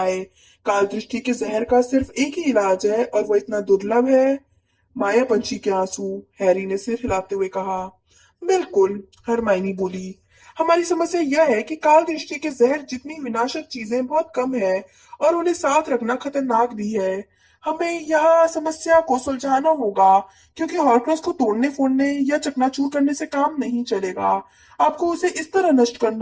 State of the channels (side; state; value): both; identical; correlation 1.00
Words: काल दृष्टि के जहर का सिर्फ एक ही इलाज है और वो इतना दुर्लभ है। माया पंछी के आंसू, हैरी ने सिर हिलाते हुए कहा। बिल्कुल, हरमाइनी बोली। हमारी समस्या यह है कि काल दृष्टि के जहर जितनी विनाशक चीजें बहुत कम है और उन्हें साथ रखना खतरनाक भी है। हमें यह समस्या को सुलझाना होगा, क्योंकि हॉर्क्रक्स को तोड़ने फोड़ने या चकनाचूर करने से काम नहीं चलेगा। आपको उसे इस तरह नष्ट